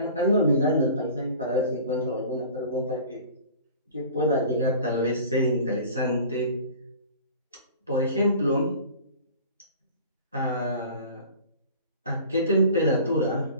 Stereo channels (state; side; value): inverted; both; correlation -0.43